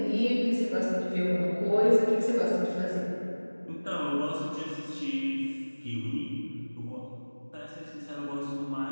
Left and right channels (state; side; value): inverted; both; correlation -1.00